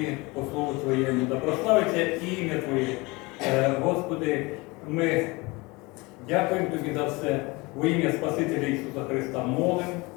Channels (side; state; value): right; quieter; 24.7 dB